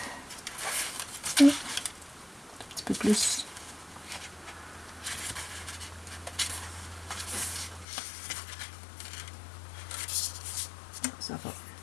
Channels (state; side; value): drops out; right; at 7.9 s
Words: Et peu plus. Ça va.